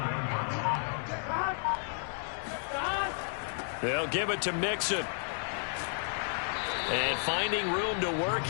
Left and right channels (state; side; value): silent; right; 56 dB below the other